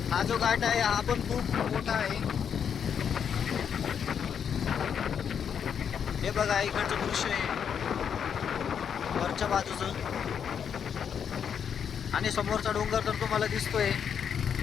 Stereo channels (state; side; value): quieter; right; 7.7 dB